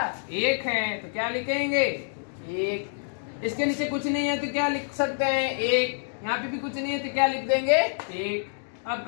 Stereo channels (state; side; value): silent; right; digital silence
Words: 1 है तो क्या लिखेंगे 1। इसके नीचे कुछ नहीं है तो क्या लिख सकते हैं 1, यहाँ पे भी कुछ नहीं है तो क्या लिख देंगे 1। अब